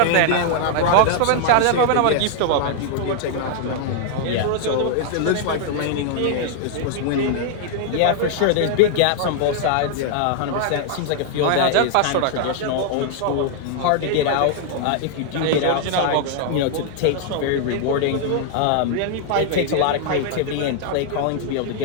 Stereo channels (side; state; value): both; different; correlation 0.00